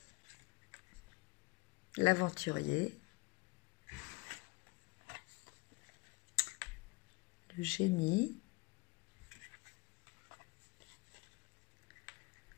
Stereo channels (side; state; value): right; quieter; 24.7 dB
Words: L'aventurier. Le génie.